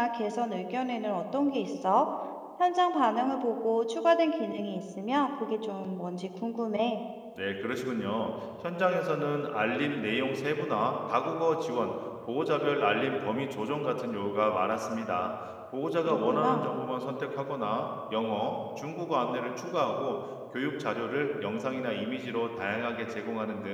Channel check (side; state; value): both; identical; correlation 1.00